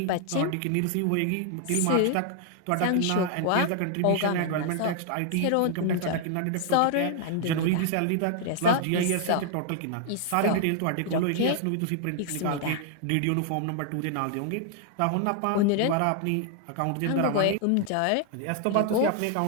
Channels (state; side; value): different; both; correlation 0.00